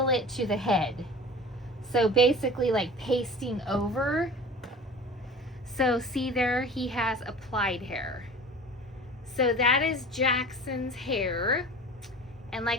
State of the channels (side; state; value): both; normal; correlation 0.39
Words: it to the head. So basically like pasting over. So see there, he has applied hair. So that is Jackson's hair. And